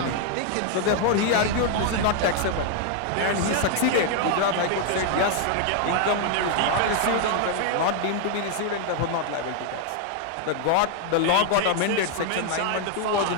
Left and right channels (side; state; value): both; different; correlation 0.00